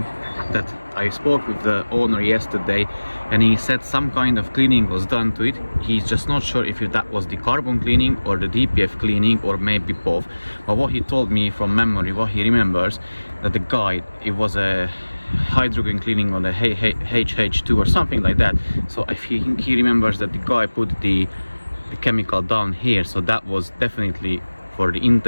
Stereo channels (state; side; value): inverted; both; correlation -1.00